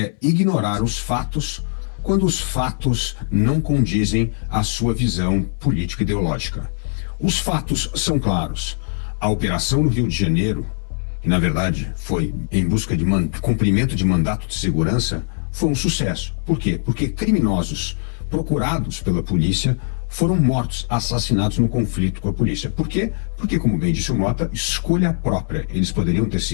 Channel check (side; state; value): right; silent; 62 dB below the other